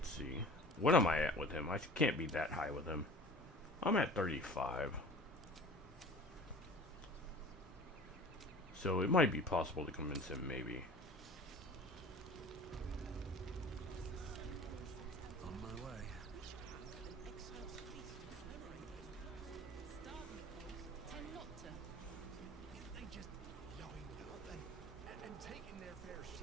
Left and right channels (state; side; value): normal; both; correlation 0.42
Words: see. What am I at with him? I can't be that high with him. I'm at 35. So it might be possible to convince him, maybe. On my way. They just blowing up and taking their fair